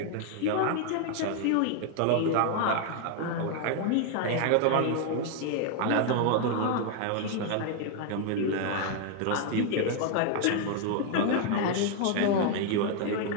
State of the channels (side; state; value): both; different; correlation 0.00